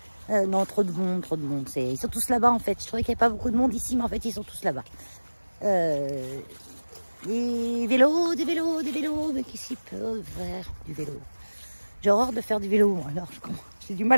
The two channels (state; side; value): inverted; both; correlation -1.00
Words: Non, trop de monde, trop de monde. Ils sont tous là-bas, en fait. Je trouvais qu'il n'y avait pas beaucoup de monde ici, mais en fait, ils sont tous là-bas. Des vélos, mais qui s'y peut faire du vélo? J'ai horreur de faire du vélo, alors j'ai du